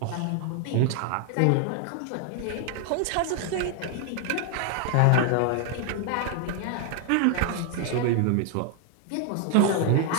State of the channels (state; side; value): different; both; correlation 0.00